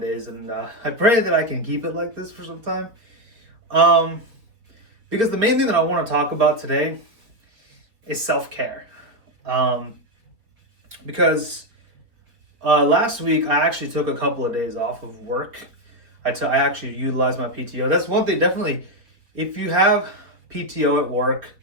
and I pray that I can keep it like this for some time. Um, because the main thing that I want to talk about today is self-care. Because last week I actually took a couple of days off of work. I actually utilized my PTO. That's one thing, definitely. If you have PTO at work,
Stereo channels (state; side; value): late; left; 4.1 ms